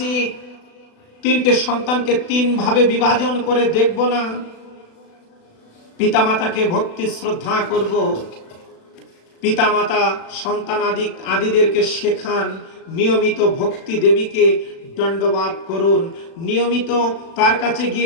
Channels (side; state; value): right; late; 36 ms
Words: তিনটে সন্তানকে তিন ভাবে বিভাজন করে দেখব না। পিতামাতাকে ভক্তি শ্রদ্ধা করব। পিতামাতা সন্তান আদিদেরকে শেখান, নিয়মিত ভক্তি দেবীকে দণ্ডবাদ করুন, নিয়মিত তার কাছে